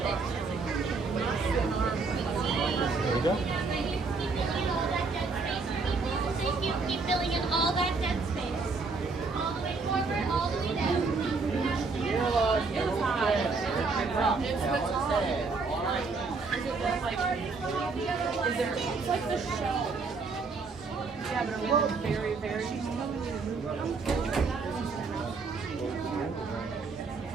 we go. Keep filling in all that dead space. All the way forward, all the way down. It's like the shell. Yeah, but are we very, very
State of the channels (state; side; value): quieter; left; 4.3 dB